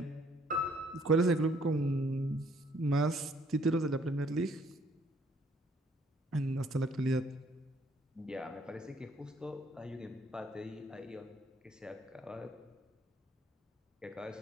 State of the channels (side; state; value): both; normal; correlation 0.64